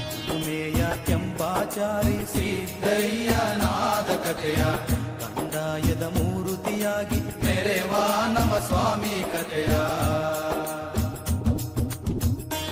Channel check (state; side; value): identical; both; correlation 1.00